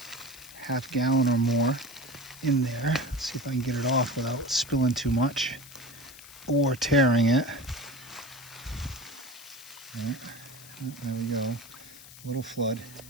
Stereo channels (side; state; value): left; noise; hiss, 18 dB below the sound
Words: half gallon or more in there. Let's see if I can get it off without spilling too much or tearing it. Right. There we go. A little flood.